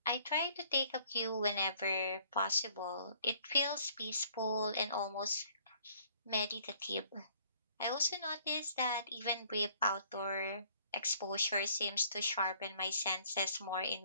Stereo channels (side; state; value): both; inverted; correlation -0.60